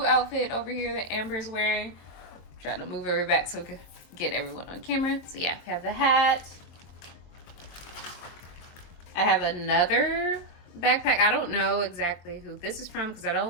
outfit over here that Amber's wearing. I'm trying to move her back so we can get everyone on camera. So yeah, we have the hat. I have another backpack. I don't know exactly who this is from because I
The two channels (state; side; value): late; right; 23 ms